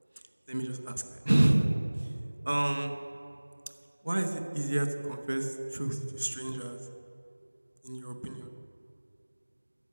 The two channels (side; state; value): both; inverted; correlation -1.00